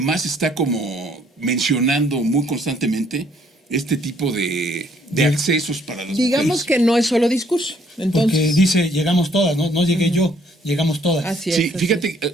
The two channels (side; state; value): both; normal; correlation 0.65